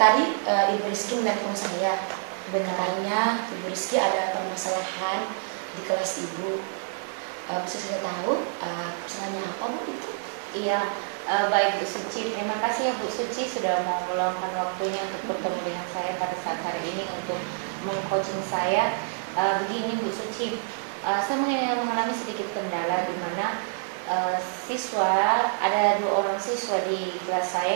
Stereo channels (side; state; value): left; silent; 60 dB below the other